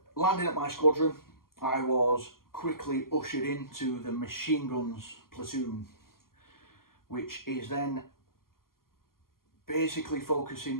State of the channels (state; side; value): late; right; 0.92 ms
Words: landing at my squadron, I was quickly ushered into the machine guns platoon, which is then basically focusing